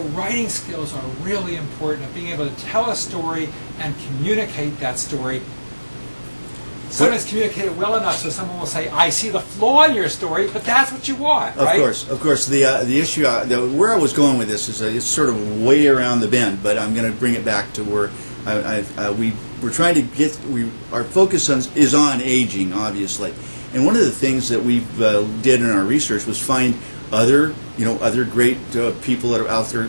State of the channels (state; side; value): inverted; both; correlation -1.00